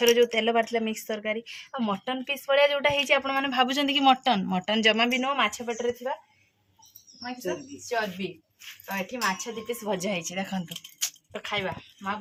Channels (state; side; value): identical; both; correlation 1.00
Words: जो तेल बाटला मिक्स तरकारी आ मटन पीस भाया जोटा है भावुं कि मटन मटन जमा भी नुह माछ पेटर थी चर्बी तो ये माछ दी पीस भजा है देखो तो खाइबा माँ